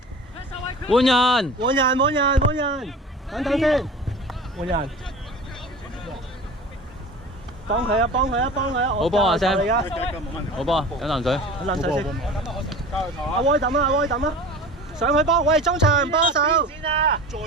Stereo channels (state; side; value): normal; both; correlation 0.37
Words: 換人，等先，換人。幫佢啊！好波啊 Sam！ 好波，飲啖水。阿威抌啊！上去幫，喂，中場幫手。先啊！再要